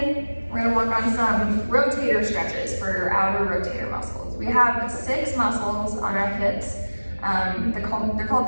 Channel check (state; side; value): inverted; both; correlation -1.00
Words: We're gonna work on some rotator stretches for your outer rotator muscles. We have 6 muscles on our hips. They're called